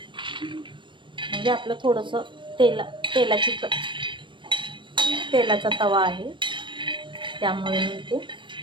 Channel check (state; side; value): late; left; 0.24 ms